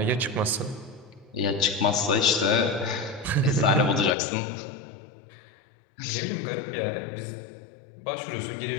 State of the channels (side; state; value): right; drops out; at 4.2 s